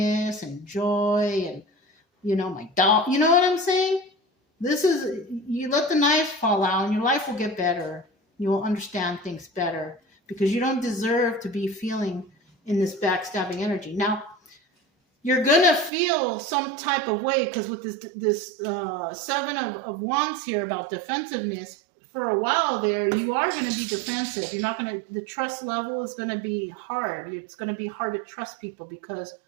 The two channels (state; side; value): drops out; left; at 15.9 s